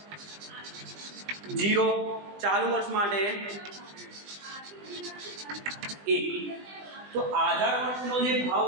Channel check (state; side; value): late; left; 20 ms